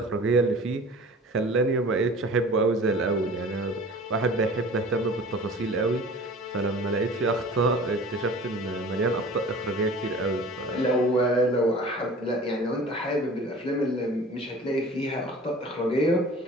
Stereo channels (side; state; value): both; normal; correlation 0.43